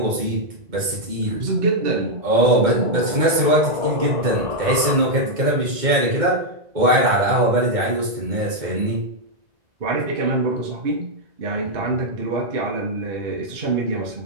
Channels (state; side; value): late; left; 2.1 ms